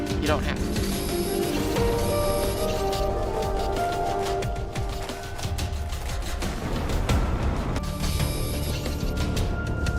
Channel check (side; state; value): both; identical; correlation 1.00